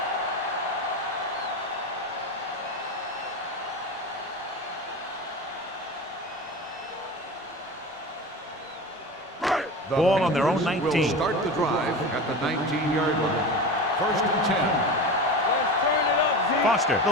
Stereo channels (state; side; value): normal; both; correlation 0.28